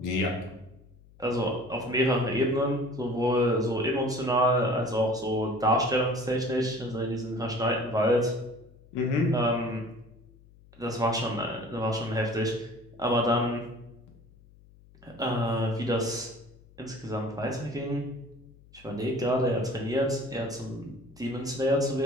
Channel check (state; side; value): noise; left; hum, 25 dB below the sound